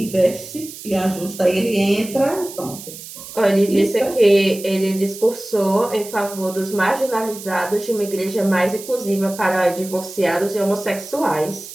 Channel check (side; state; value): right; noise; hiss, 13 dB below the sound